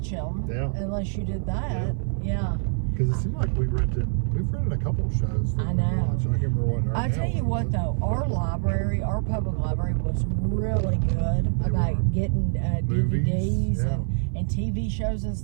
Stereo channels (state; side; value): silent; left; 56 dB below the other